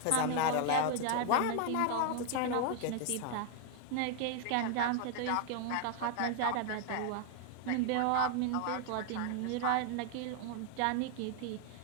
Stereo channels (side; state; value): both; different; correlation 0.00